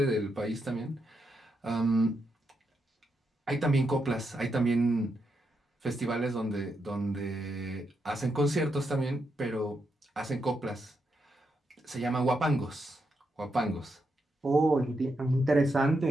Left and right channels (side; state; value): both; normal; correlation 0.82